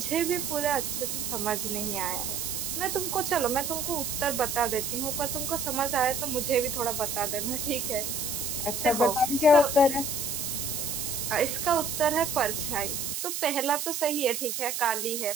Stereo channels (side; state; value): right; noise; hiss, 3 dB below the sound